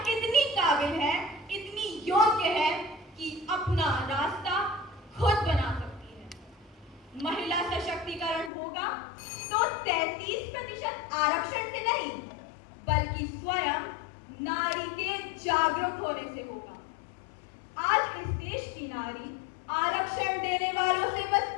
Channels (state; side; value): drops out; right; at 8.5 s